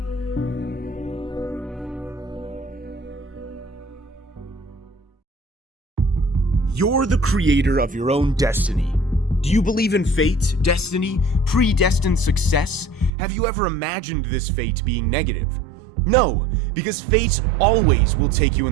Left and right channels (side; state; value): left; drops out; at 13.1 s